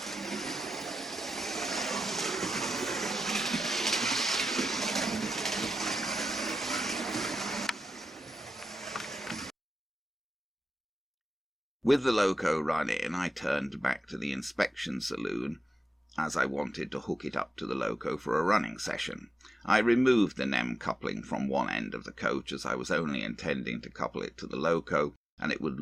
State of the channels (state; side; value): normal; both; correlation 0.91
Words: With the loco run in, I turned back to the inspection saloon, as I wanted to hook it up to the loco for a running session. I removed the NEM coupling from one end of the coach, as I was only intending to couple it to the loco, and it would